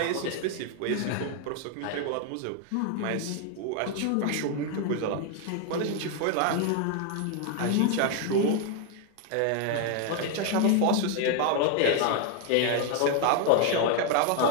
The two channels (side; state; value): both; different; correlation 0.01